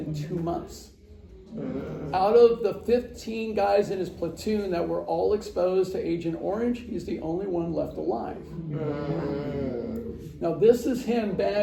2 months. Out of the 15 guys in his platoon that were all exposed to Agent Orange, he's the only one left alive. Now this is him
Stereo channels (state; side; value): identical; both; correlation 1.00